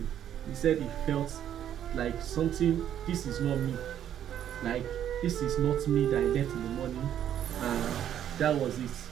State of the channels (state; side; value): quieter; left; 10.3 dB